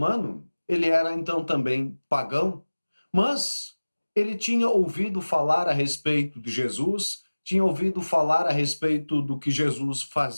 ele era então também pagão, mas ele tinha ouvido falar a respeito de Jesus, tinha ouvido falar a respeito do que Jesus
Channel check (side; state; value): both; inverted; correlation -1.00